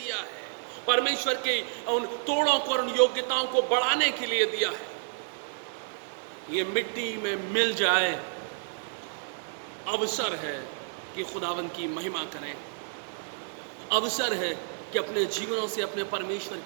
है, परमेश्वर के उन तोड़ों को और उन योग्यताओं को बढ़ाने के लिए दिया है, ये मिट्टी में मिल जाए। अवसर है कि खुदावंद की महिमा करें, अवसर है कि अपने जीवनों से अपने परमेश्वर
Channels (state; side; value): silent; left; digital silence